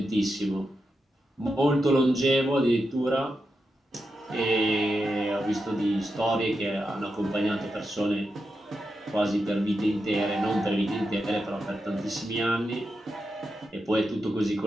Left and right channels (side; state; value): both; normal; correlation 0.88